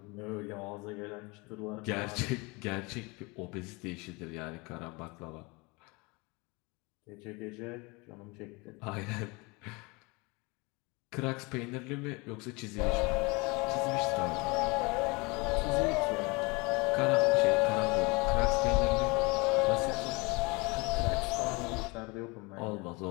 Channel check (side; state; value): right; quieter; 27.0 dB